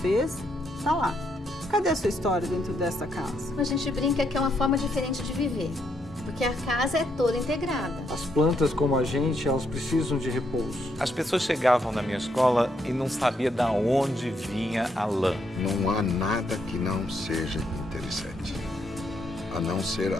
Fez, tá lá. Cadê a sua história dentro dessa casa? A gente brinca que é uma forma diferente de viver, porque a casa é toda integrada. As plantas, como a gente, elas precisam de repouso. As pessoas chegavam na minha escola e não sabia de onde vinha a lã. Não há nada que não seja interessante, a não ser a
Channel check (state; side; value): normal; both; correlation 0.76